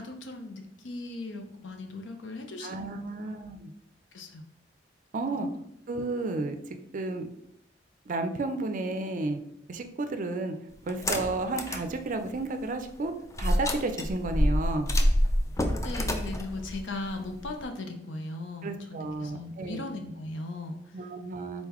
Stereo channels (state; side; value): normal; both; correlation 0.67